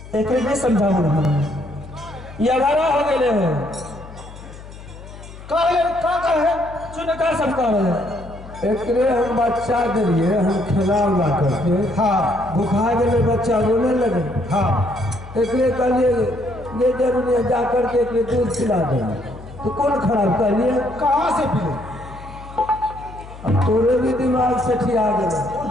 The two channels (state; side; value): noise; left; hum, 16 dB below the sound